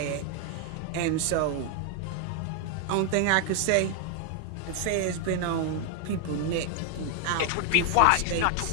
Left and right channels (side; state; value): both; different; correlation 0.00